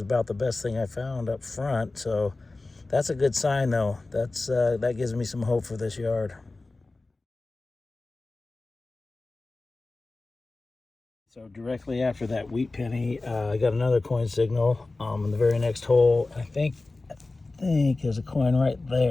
about the best thing I found up front. So that's a good sign, though. That gives me some hope for this yard. So directly after that wheat penny, I got another coin signal in the very next hole. I think there's a coin right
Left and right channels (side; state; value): right; quieter; 3.3 dB